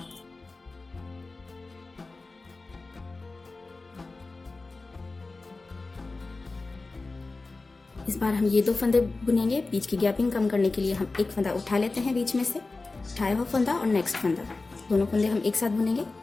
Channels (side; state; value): right; quieter; 3.5 dB